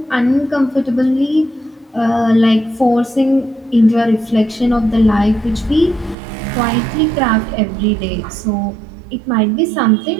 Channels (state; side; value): drops out; left; at 6.2 s